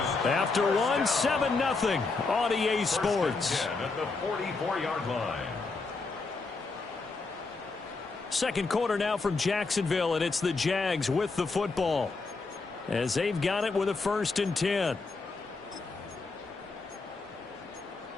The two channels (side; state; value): right; quieter; 4.0 dB